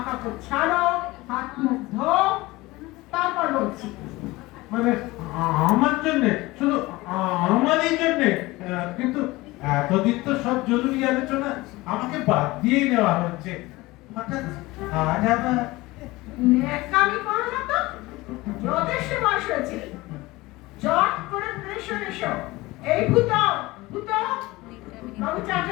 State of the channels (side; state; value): right; quieter; 20.5 dB